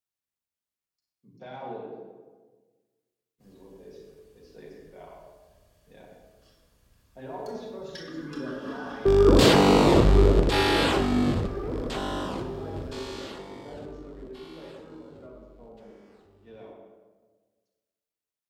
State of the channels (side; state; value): both; identical; correlation 1.00